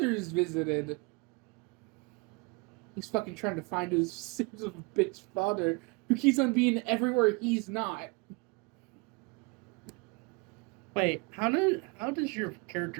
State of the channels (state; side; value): quieter; left; 29.4 dB